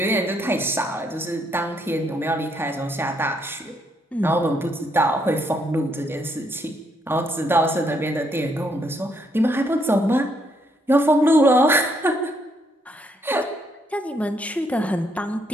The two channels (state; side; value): normal; both; correlation 0.73